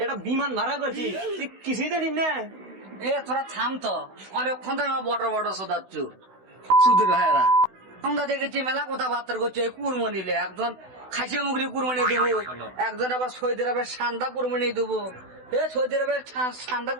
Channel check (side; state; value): left; late; 16 ms